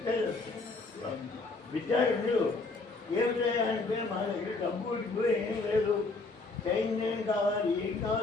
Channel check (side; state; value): right; quieter; 3.6 dB